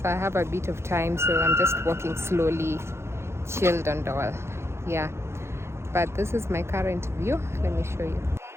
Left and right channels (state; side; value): late; left; 0.13 ms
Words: I have a bit of time, so I'm just walking slowly, chilled and all. Yeah, but this is my current view. Let me show you.